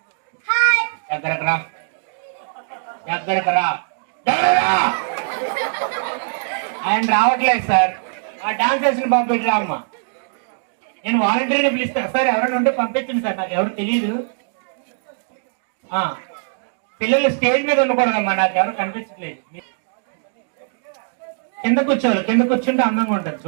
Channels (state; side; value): silent; left; digital silence